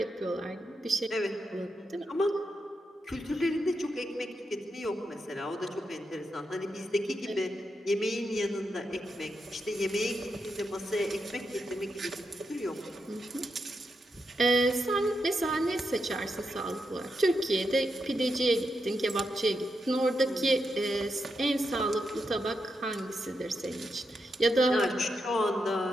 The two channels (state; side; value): normal; both; correlation 0.85